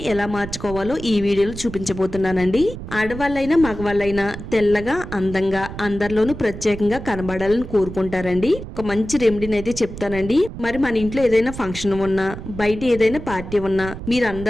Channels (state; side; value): noise; right; rumble, 10 dB below the sound